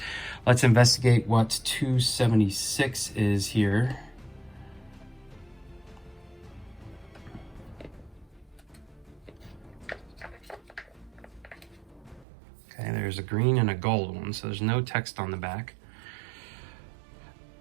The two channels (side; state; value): left; drops out; at 12.2 s